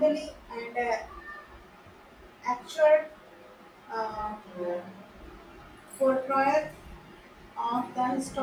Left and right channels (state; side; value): identical; both; correlation 1.00